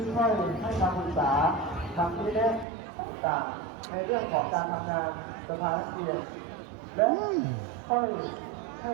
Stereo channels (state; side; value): drops out; left; at 2.7 s